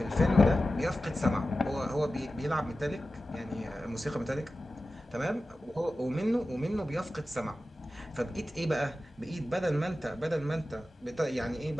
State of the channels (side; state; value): both; normal; correlation 0.94